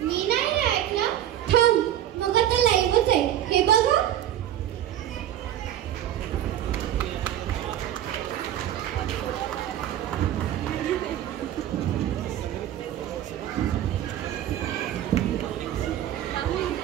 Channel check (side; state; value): left; quieter; 11.7 dB